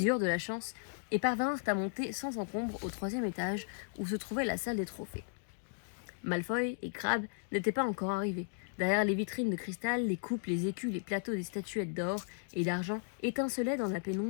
eurent de la chance et parvinrent à monter sans encombre au 3e étage où se trouvait la salle des trophées. Malfoy et Crabbe n'étaient pas encore arrivés. Derrière les vitrines de cristal, les coupes, les écus, les plateaux des statuettes d'or et d'argent étincelaient dans la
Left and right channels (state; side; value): silent; right; digital silence